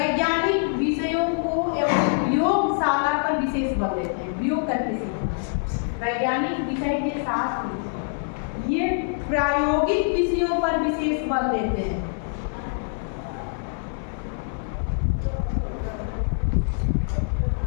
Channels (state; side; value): silent; right; 56 dB below the other